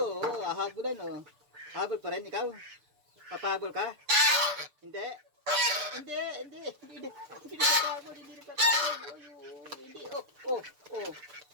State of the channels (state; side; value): late; left; 6.7 ms